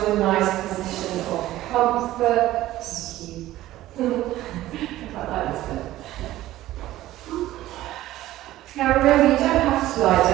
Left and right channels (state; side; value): quieter; left; 15.2 dB